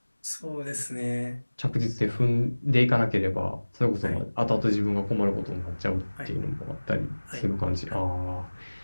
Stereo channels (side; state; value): both; inverted; correlation -1.00